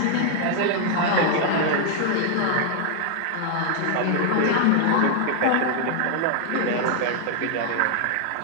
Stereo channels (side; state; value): both; different; correlation 0.00